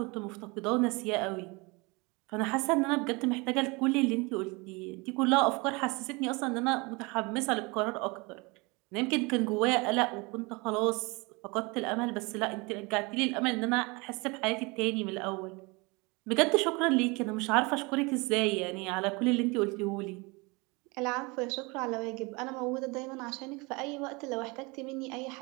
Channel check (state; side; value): quieter; left; 27.0 dB